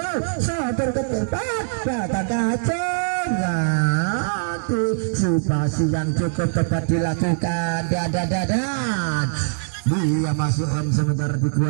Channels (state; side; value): silent; left; digital silence